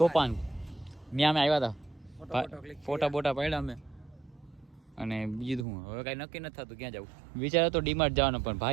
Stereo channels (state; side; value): drops out; left; at 5.7 s